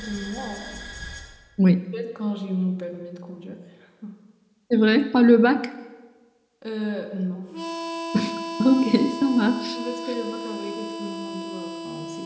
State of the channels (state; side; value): identical; both; correlation 1.00